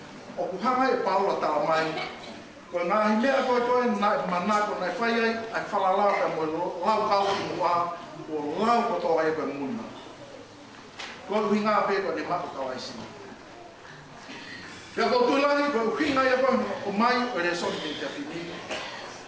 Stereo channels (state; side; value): identical; both; correlation 1.00